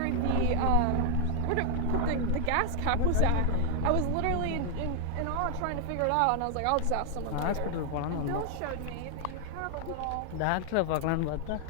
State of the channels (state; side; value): different; both; correlation 0.00